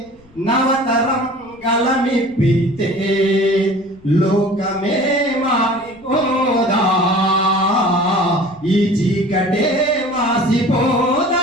నవతరం గలమిప్పితే లోకమే మారిపోదా, ఈ చీకటే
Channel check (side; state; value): left; noise; rumble, 29 dB below the sound